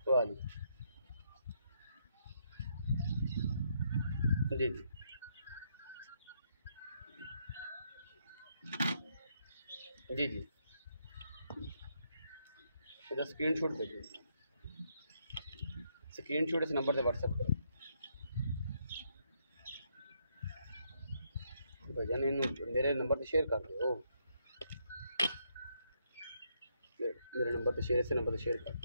वाह जी जी जी जी स्क्रीनशॉट भेजो, स्क्रीनशॉट इस नंबर से व्हाट्सएप करो भजन, इन मेरे नंबर से शेयर कर दो, मेरे नंबर से शेयर, इस नंबर से शेयर कर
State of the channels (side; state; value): both; inverted; correlation -0.75